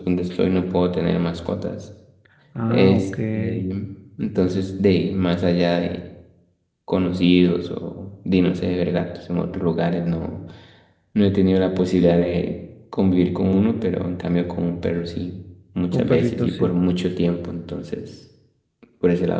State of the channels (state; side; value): identical; both; correlation 1.00